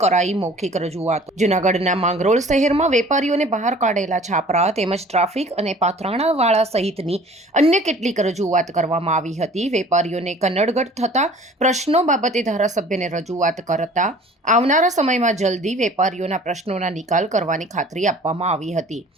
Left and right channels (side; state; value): both; normal; correlation 0.49